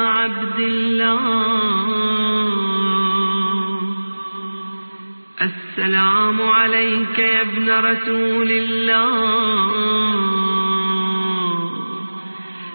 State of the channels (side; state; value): both; inverted; correlation -1.00